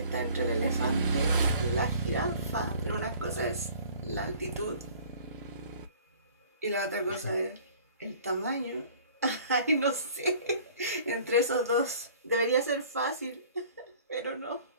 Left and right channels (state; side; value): inverted; both; correlation -0.50